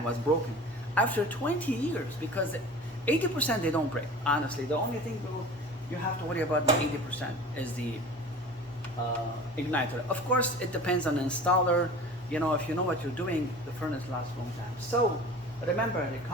was broken. After 20 years, because 80% they don't break, honestly. The only thing you have to worry about the 80% is the igniter. Of course, it depends on the installer. You know, if you know what you're doing, the furnace lasts a long time. So remember, the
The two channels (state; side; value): noise; right; hum, 28 dB below the sound